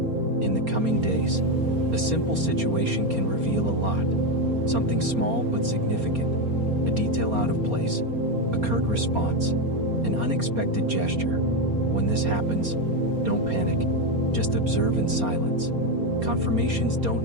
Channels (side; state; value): left; late; 4.3 ms